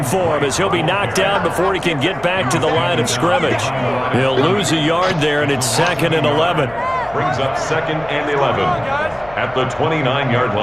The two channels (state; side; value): noise; left; hum, 22 dB below the sound